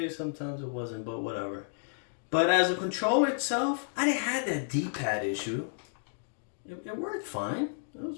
sometimes it wasn't, but whatever. But as a controller itself, I didn't have that D-pad issue. It worked fine. It was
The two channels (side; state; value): right; silent; digital silence